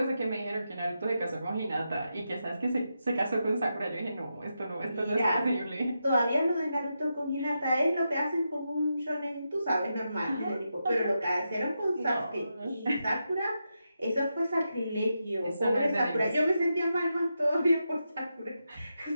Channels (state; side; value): inverted; both; correlation -0.86